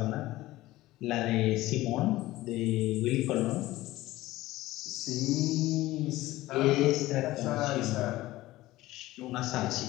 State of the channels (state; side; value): quieter; right; 17.2 dB